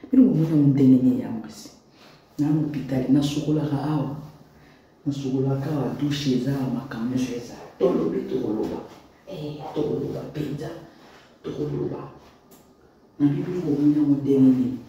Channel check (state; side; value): identical; both; correlation 1.00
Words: Mais nous avons un déni ya mwasi. Na hôpital, na sukola ka awa, na sukola ka wa douche za makamyo za. Tolo bito koloba, tolo ba pizza, tolo ba. Na bibi nous avons un déni.